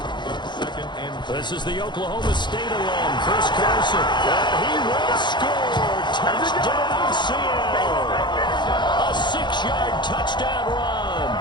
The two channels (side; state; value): right; late; 0.22 ms